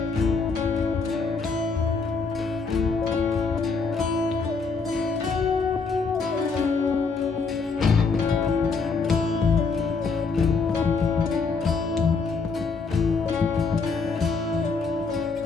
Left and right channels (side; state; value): right; quieter; 4.6 dB